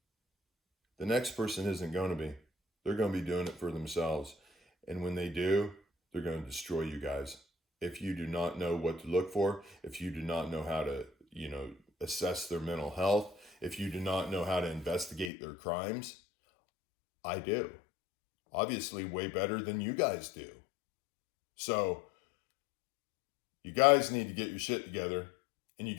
The next person isn't going to be. They're going to be doing it for themselves. And when they do, they're going to destroy you guys. If you do not know what to look for, if you do not know how to, assess their mental health, if you do not know how to investigate their crimes, I do. Obviously, way better than you guys do. So, you guys need to get your shit together, and you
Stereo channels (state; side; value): drops out; right; at 15.3 s